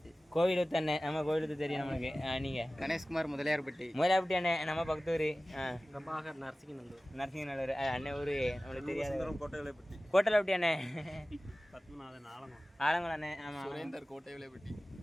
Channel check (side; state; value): both; normal; correlation 0.97